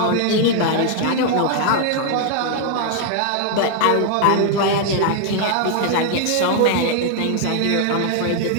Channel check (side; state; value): both; different; correlation 0.00